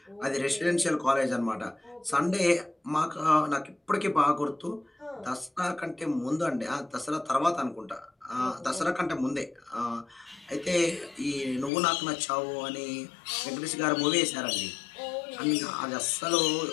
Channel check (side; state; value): right; drops out; at 11.7 s